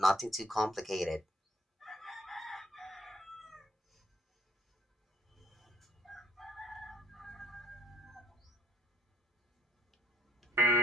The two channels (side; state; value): both; normal; correlation 0.63